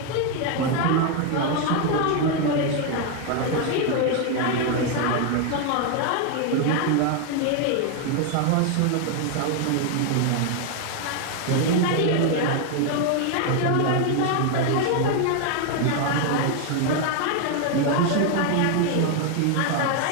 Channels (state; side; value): different; both; correlation 0.01